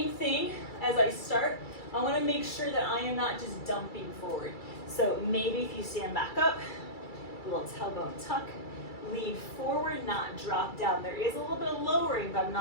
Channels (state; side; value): late; right; 2.3 ms